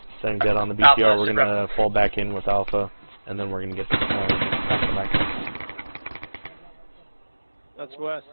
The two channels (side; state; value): both; inverted; correlation -1.00